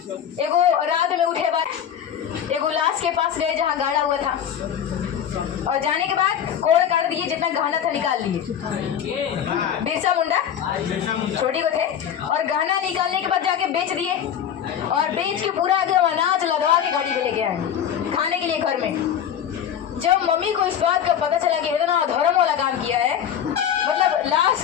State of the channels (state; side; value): quieter; right; 9.1 dB